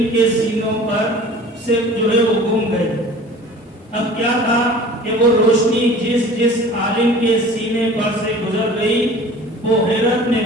کے سینوں پر سے جو ہے وہ گم گئے۔ اب کیا تھا کہ وہ روشنی جس عالم کے سینے پر سے گزر گئی، وہ حیرت میں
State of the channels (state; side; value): normal; both; correlation 0.44